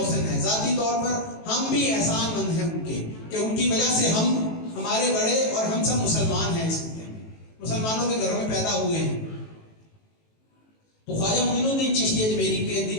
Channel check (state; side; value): late; right; 18 ms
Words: ہیں. ذاتی طور پر ہم بھی احسان مند ہیں ان کے کہ ان کی وجہ سے ہم, ہمارے بڑے اور ہم سب مسلمان ہیں, اس مسلمانوں کے گھروں میں پیدا ہوئے ہیں. تو خواجہ معین الدین چشتی اجمیری کے